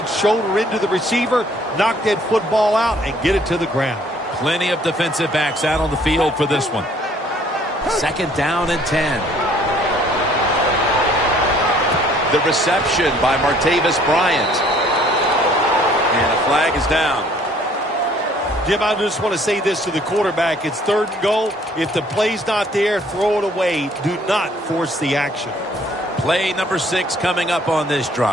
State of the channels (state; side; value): normal; both; correlation 0.59